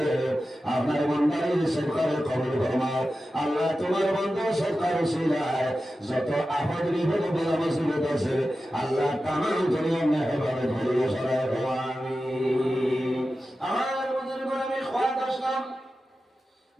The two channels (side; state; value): both; normal; correlation 0.93